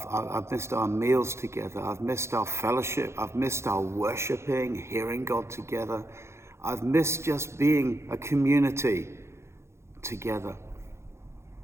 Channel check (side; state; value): left; late; 0.13 ms